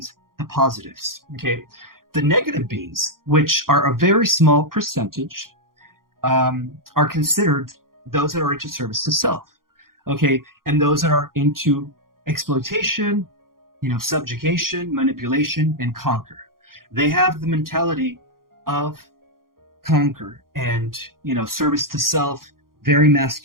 the positives, okay? The negative beings, which are a very small percentage, are considered those that are into service to self, okay? And those that are into exploitation, subjugation, manipulation, and conquer. They have the mentality of conquer and, service to self, very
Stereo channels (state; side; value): late; left; 0.91 ms